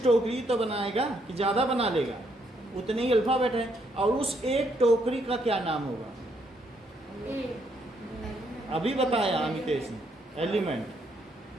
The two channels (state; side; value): normal; both; correlation 0.73